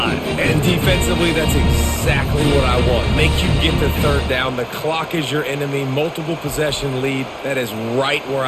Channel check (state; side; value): identical; both; correlation 1.00